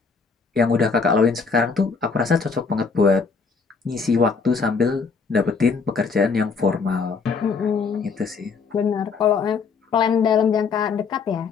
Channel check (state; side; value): quieter; right; 5.0 dB